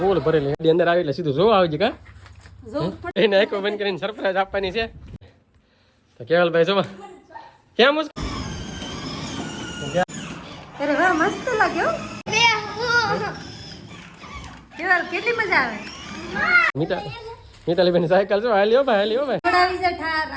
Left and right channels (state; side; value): identical; both; correlation 1.00